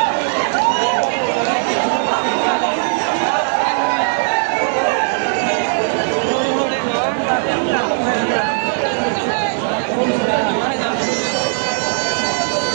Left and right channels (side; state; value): left; silent; digital silence